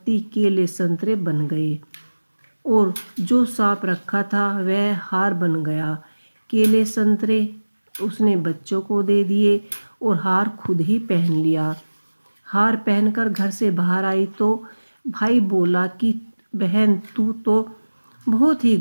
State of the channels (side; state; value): both; inverted; correlation -1.00